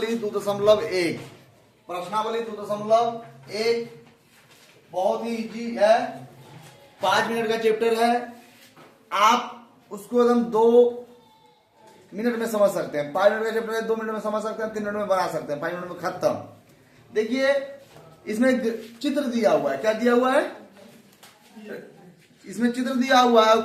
2.1। प्रश्नावली 2.1 बहुत ही इजी है, 5 मिनट का चैप्टर है। आप उसको एकदम 2 मिनट में समझ सकते हैं। 5 मिनट का चैप्टर है, 2 मिनट में समझ सकते हैं, 3 मिनट में बना सकते हैं, 5 मिनट में खत्म। देखिए इसमें चित्र दिया हुआ है। क्या दिया हुआ है? इसमें चित्र दिया हुआ है।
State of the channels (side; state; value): both; identical; correlation 1.00